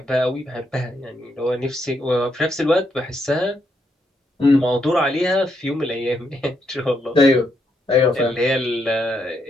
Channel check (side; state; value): both; normal; correlation 0.78